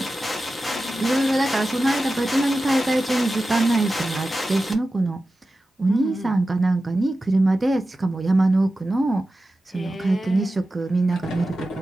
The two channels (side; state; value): both; normal; correlation 0.93